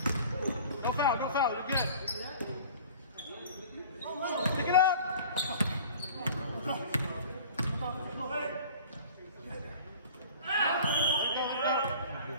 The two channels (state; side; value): inverted; both; correlation -0.44